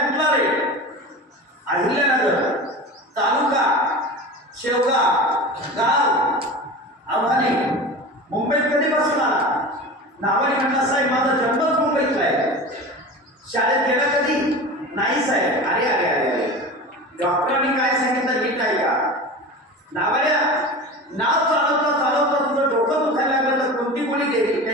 रे? अहिल्यानगर, तालुका शेवगाव, गाव आव्हाने. मुंबईत कधीपासून आला? नावाने म्हटलं साहेब माझा जन्मच मुंबईतला आहे. शाळेत गेला कधी? नाही साहेब. अरे अरे अरे अरे. डॉक्टरांनी काय सांगितलं नीट आहे का? नावड्या नाव चालवता तुझं डोकं दुखायला लागलं तर कोणती गोळी गेली?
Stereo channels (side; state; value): both; normal; correlation 0.32